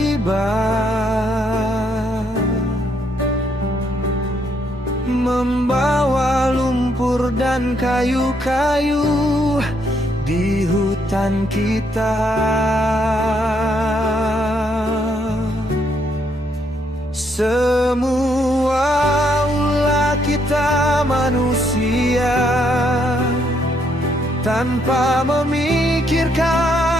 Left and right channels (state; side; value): normal; both; correlation 0.73